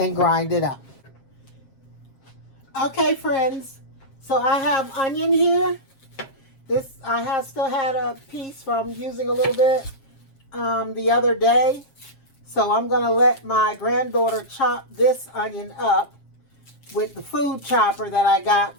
grind it up. Okay, friends, so I have onion here. This I have still had a piece from using a little bit the other day. So I'm going to let my granddaughter chop this onion up with the food chopper that I got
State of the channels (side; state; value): right; late; 7.4 ms